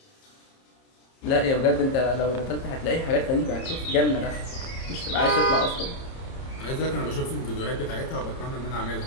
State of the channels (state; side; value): late; right; 30 ms